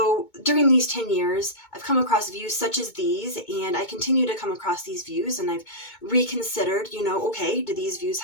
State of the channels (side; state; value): right; late; 2.2 ms